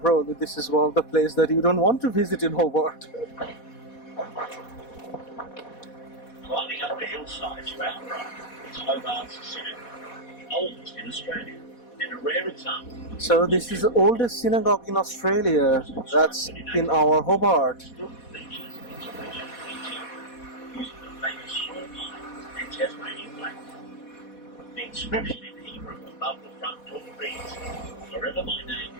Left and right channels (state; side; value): late; right; 4.1 ms